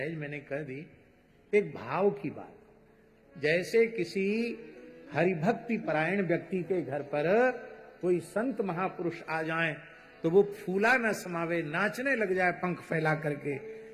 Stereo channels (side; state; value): both; identical; correlation 1.00